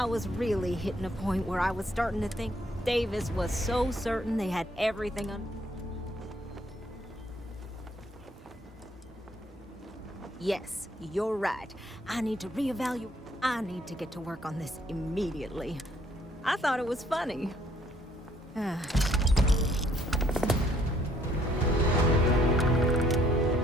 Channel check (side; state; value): both; normal; correlation 0.65